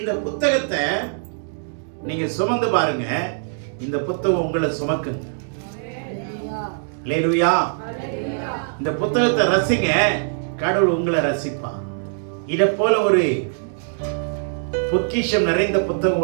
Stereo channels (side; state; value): left; silent; digital silence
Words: புத்தகத்தை நீங்க சுமந்து பாருங்க. இந்த புத்தகம் உங்களை சுமக்குங்க. அல்லேலூயா. இந்த புத்தகத்தை ரசிங்க, கடவுள் உங்களை ரசிப்பார். இதை போல ஒரு பொக்கிஷம் நிறைந்த புத்தகம்